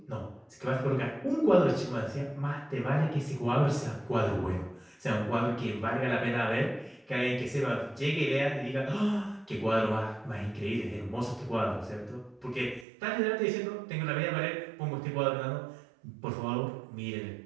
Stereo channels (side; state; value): left; drops out; at 12.9 s